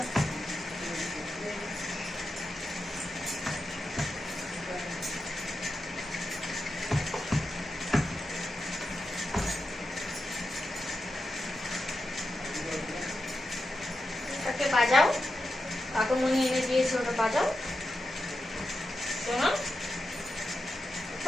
ওটাকে বাজাও, কাকুমনি এনে দিয়েছে, ওটা বাজাও। শোনো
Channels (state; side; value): normal; both; correlation 0.89